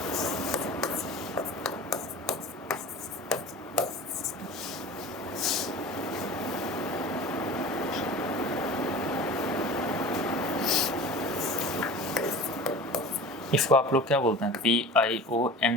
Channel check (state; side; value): normal; both; correlation 0.37